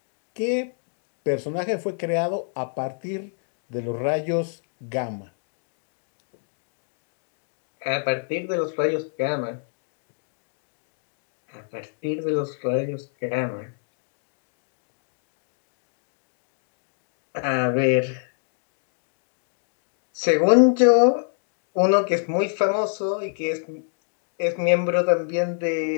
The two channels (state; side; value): silent; right; digital silence